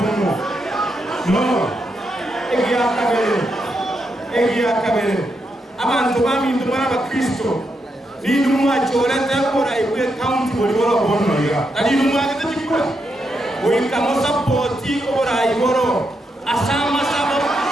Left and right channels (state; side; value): normal; both; correlation 0.82